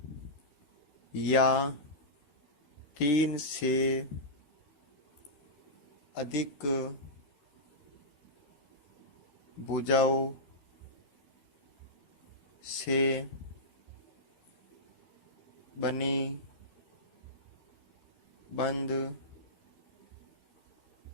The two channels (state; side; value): late; right; 13 ms